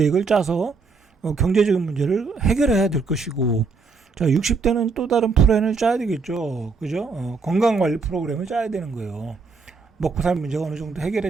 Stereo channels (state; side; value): quieter; left; 4.5 dB